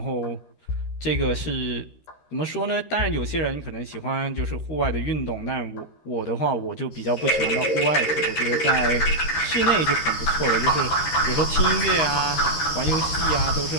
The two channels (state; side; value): late; right; 13 ms